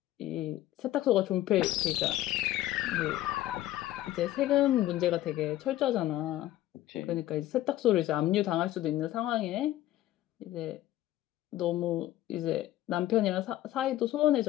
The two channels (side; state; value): right; quieter; 14.4 dB